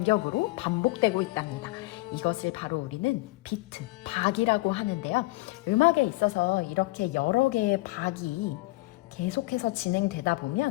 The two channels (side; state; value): right; quieter; 21.6 dB